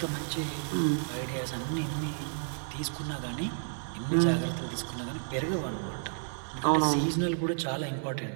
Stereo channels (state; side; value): silent; left; digital silence